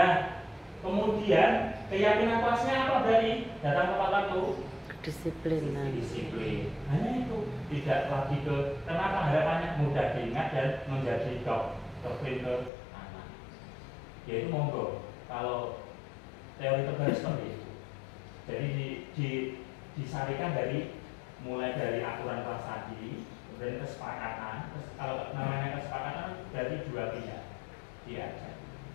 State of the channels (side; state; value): right; drops out; at 12.7 s